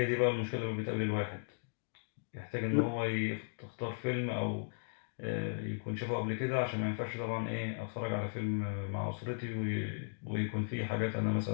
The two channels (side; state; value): right; silent; digital silence